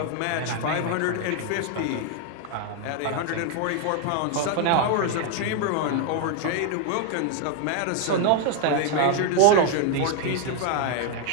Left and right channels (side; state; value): both; different; correlation 0.01